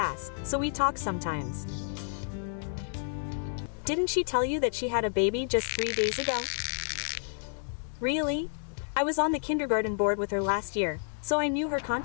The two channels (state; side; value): silent; right; digital silence